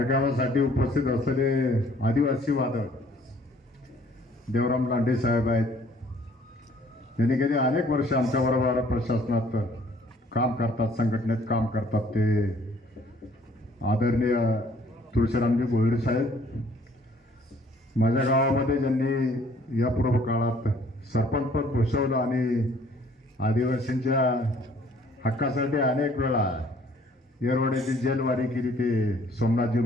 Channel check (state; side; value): normal; both; correlation 0.59